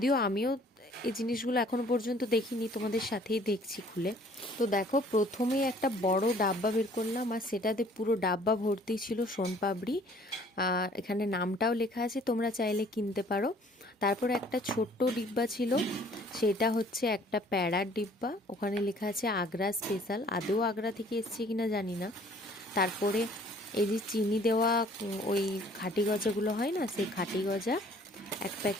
আমিও এই জিনিসগুলো এখনো পর্যন্ত দেখিনি, তোমাদের সাথেই দেখছি খুলে। তো দেখো, প্রথমেই একটা বড় ডাব্বা বের করলাম, আর সেটাতে পুরো ডাব্বা ভর্তি ছিল সোনপাপড়ি। আর এখানে নামটাও লেখা আছে, তোমরা চাইলে কিনতে পারো। তারপর একটা ছোট্ট ডিব্বা ছিল, সেটা হচ্ছে একটা প্যাড়ার ডিব্বা, ওখানে লেখা আছে আগ্রা স্পেশাল। আদৌ আগ্রা থেকে এসছে কিনা জানি না। তারপরে এই যে চিনি দেওয়া ওই খাঁটি গজাগুলো হয় না, সেই খাঁটি গজা এক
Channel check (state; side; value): normal; both; correlation 0.56